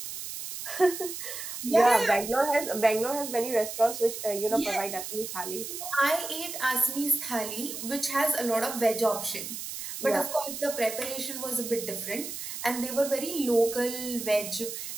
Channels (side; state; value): right; noise; hiss, 7 dB below the sound